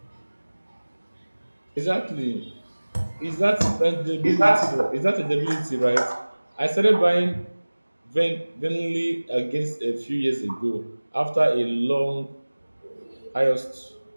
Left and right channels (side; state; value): both; inverted; correlation -1.00